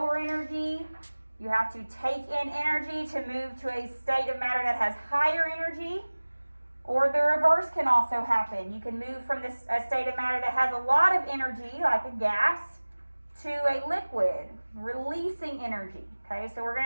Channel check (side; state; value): both; inverted; correlation -1.00